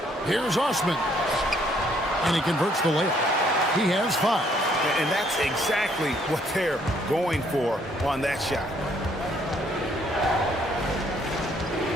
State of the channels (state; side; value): normal; both; correlation 0.66